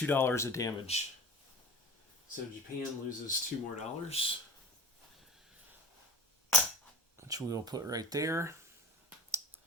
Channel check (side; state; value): both; normal; correlation 0.35